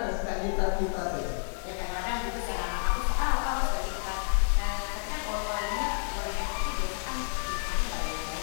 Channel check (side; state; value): right; silent; digital silence